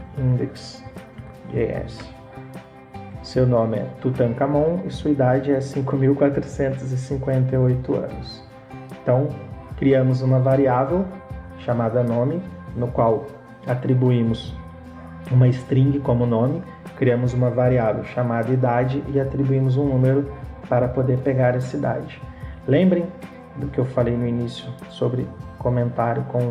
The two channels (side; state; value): both; identical; correlation 1.00